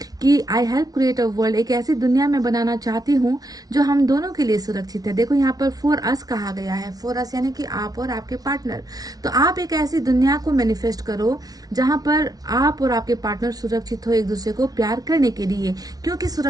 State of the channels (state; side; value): late; left; 0.18 ms